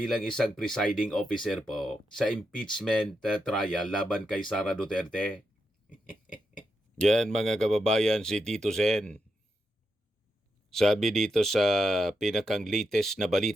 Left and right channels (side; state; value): both; normal; correlation 0.84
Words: isang presiding officer po sa impeachment trial laban kay Sara Duterte. Yan mga kababayan, si Tito Sen. Sabi dito sa pinakang latest na